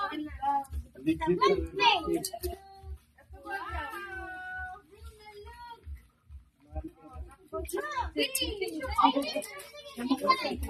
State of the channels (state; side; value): identical; both; correlation 1.00